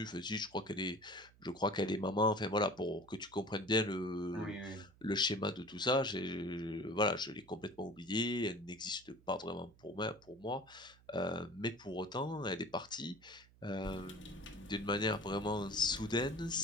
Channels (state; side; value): noise; right; hum, 26 dB below the sound